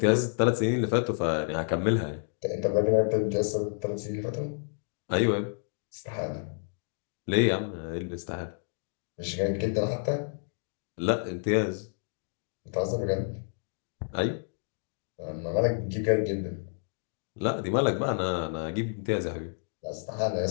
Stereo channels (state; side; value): silent; right; digital silence